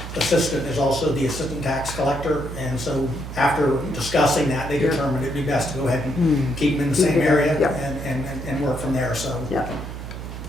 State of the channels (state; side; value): noise; right; hum, 9 dB below the sound